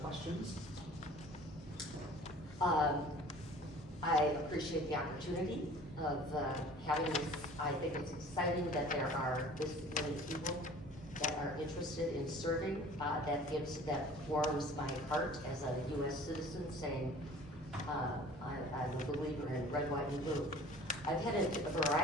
I appreciate the opportunity of having this. I think it's exciting that there are this many people that are interested in serving. That warms my heart as a U.S. citizen, saying I'm a believer in red, white, and blue. I've had a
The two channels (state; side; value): normal; both; correlation 0.47